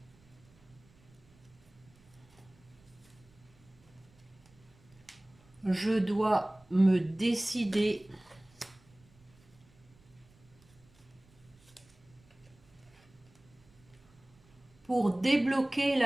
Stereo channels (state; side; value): noise; right; rumble, 28 dB below the sound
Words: Je dois me décider pour débloquer